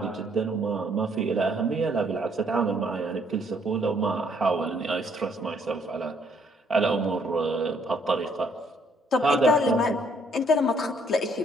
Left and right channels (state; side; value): normal; both; correlation 0.67